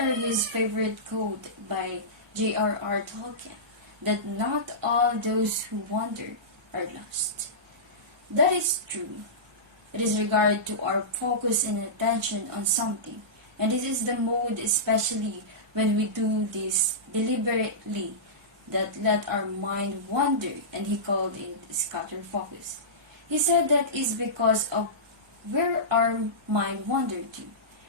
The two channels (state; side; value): normal; both; correlation -0.18